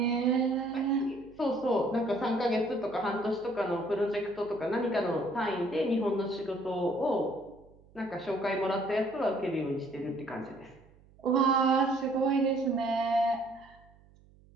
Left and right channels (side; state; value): right; noise; hum, 27 dB below the sound